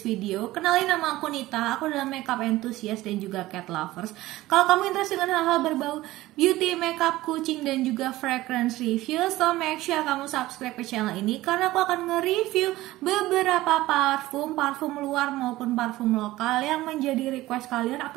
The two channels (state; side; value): quieter; left; 17.2 dB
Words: video. Kenalin, nama aku Nita, aku adalah makeup enthusiast dan juga cat lovers. Kalau kamu interest dengan hal-hal berbau beauty, makeup, kucing, dan juga fragrance review, so make sure kamu subscribe ke channel ini karena aku akan nge-review beberapa parfum luar maupun parfum lokal yang menjadi request kalian